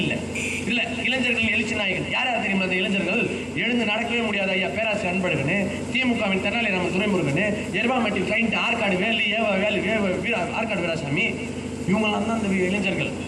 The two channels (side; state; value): both; identical; correlation 1.00